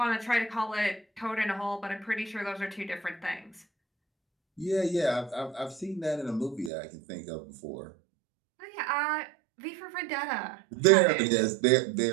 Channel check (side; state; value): left; drops out; at 6.7 s